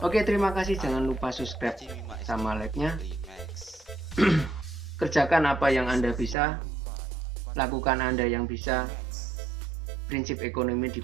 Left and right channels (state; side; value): drops out; left; at 6.4 s